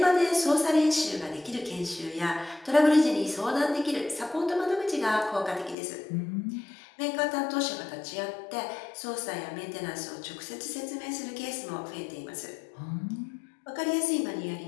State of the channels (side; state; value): right; drops out; at 5.8 s